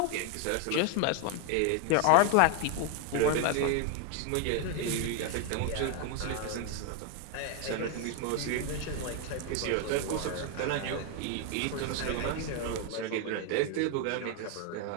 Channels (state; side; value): different; both; correlation 0.01